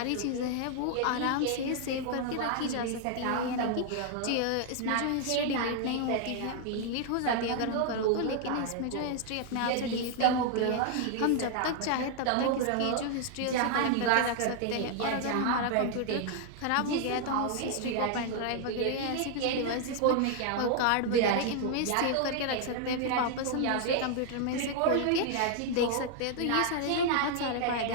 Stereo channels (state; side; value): different; both; correlation 0.00